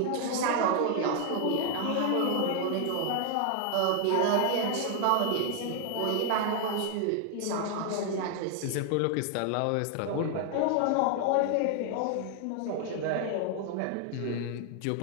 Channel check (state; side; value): different; both; correlation 0.00